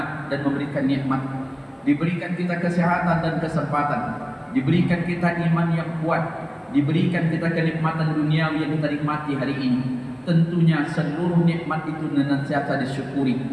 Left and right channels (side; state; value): both; identical; correlation 1.00